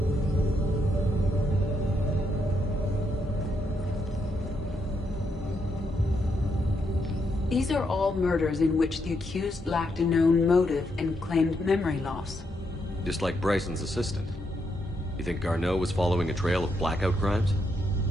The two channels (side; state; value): both; normal; correlation 0.79